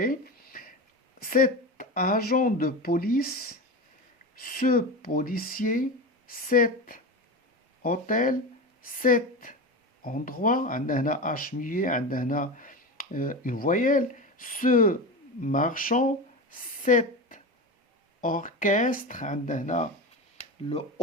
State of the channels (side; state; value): both; normal; correlation 0.24